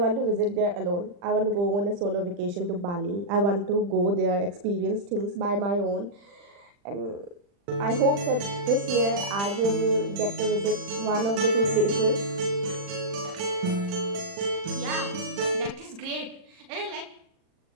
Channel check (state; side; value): late; left; 40 ms